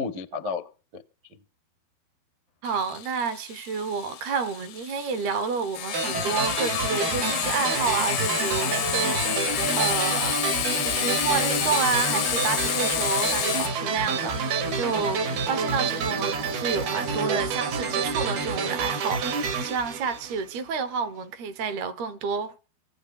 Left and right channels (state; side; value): late; left; 12 ms